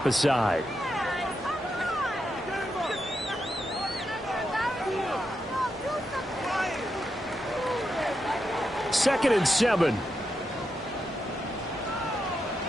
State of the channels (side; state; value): both; normal; correlation 0.85